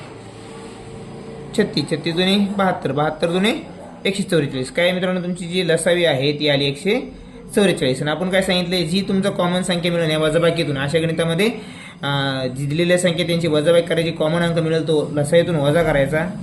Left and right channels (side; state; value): both; identical; correlation 1.00